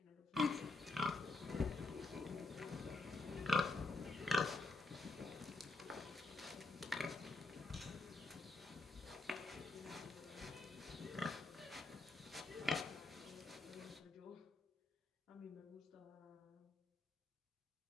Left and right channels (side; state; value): right; quieter; 3.1 dB